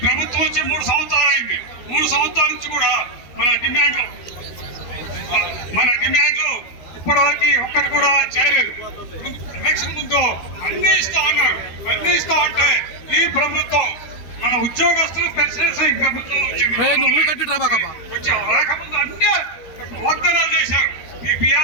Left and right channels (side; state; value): right; late; 13 ms